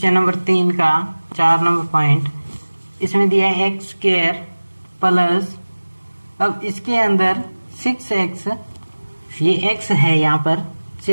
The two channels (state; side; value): inverted; both; correlation -1.00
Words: नंबर 3 का 4 नंबर पॉइंट, इसमें दिया है x² प्लस, अब इसके अंदर 6x, ये x है यहाँ पर,